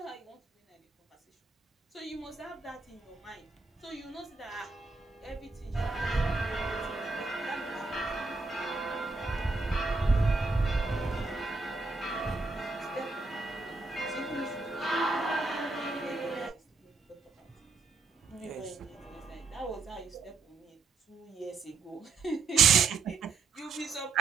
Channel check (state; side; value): quieter; left; 4.0 dB